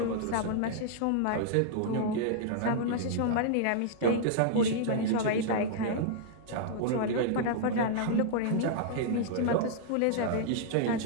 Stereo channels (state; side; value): different; both; correlation -0.01